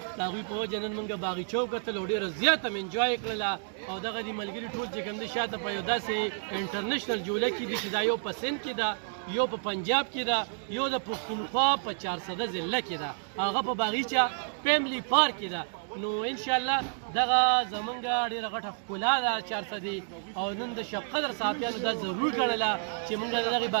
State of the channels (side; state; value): left; silent; digital silence